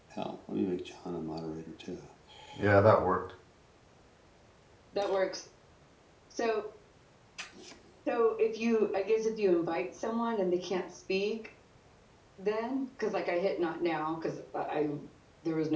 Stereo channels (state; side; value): identical; both; correlation 1.00